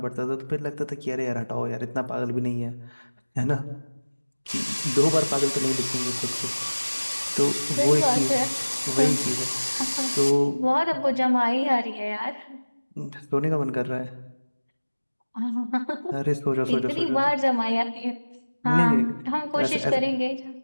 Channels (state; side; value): inverted; both; correlation -1.00